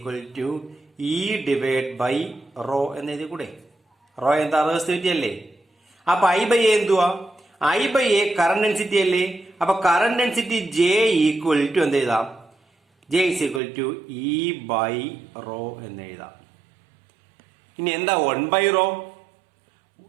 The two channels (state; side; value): drops out; left; at 13.6 s